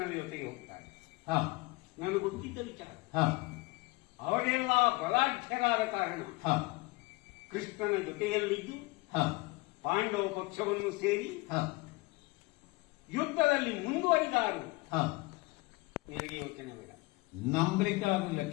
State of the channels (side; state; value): right; quieter; 23.9 dB